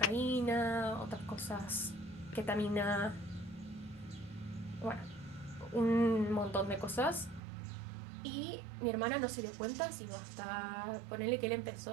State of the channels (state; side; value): drops out; left; at 7.4 s